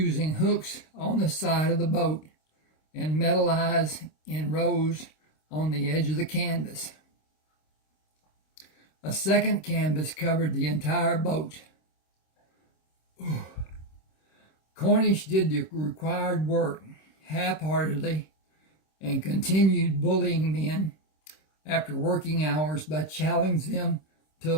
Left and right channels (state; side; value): late; right; 26 ms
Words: hooks on the side of the boat and metal eyes in rows on the edge of the canvas. A second canvas covered the entire boat. Cornish did the required work half-heartedly and continued bullying men after working hours by challenging them to